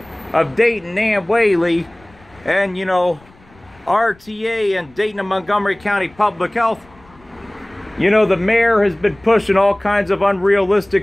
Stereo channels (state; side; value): noise; left; rumble, 28 dB below the sound